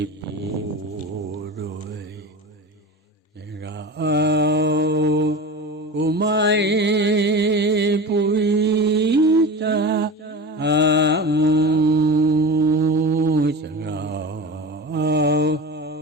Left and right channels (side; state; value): both; normal; correlation 0.31